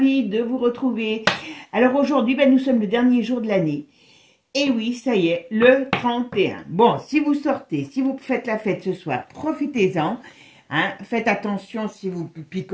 de vous retrouver. Alors aujourd'hui, nous sommes le dernier jour de l'année. Et oui, ça y est, le 31. Bon, si vous sortez, si vous faites la fête ce soir, profitez-en. Hein, faites attention si vous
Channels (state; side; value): identical; both; correlation 1.00